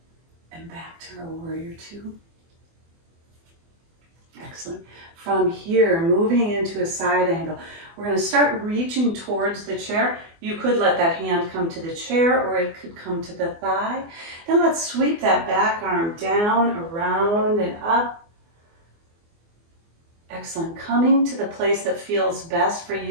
And back to our warrior two. Excellent. From here, moving into a side angle, we're going to start reaching towards the chair. You could let that hand come to the chair, or it could come to the thigh. Then let's sweep that back arm down, around, and up. Excellent. Coming to the place that feels best for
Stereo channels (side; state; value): left; late; 24 ms